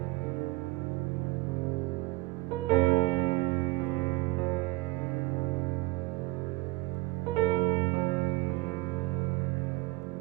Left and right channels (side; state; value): left; quieter; 22.6 dB